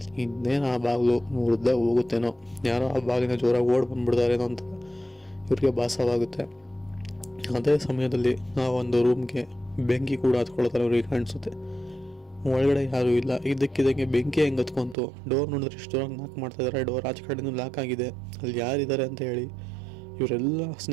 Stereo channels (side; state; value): left; drops out; at 15.0 s